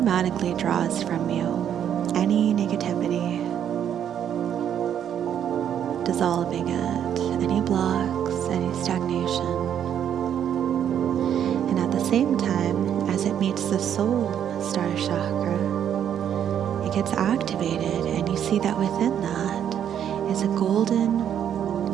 draws from you any negativity, dissolving it, any blocks, any stagnation. And at the same time, as it meets the soul star chakra, it gets activated, and you see that within that is a golden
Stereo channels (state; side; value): quieter; left; 9.4 dB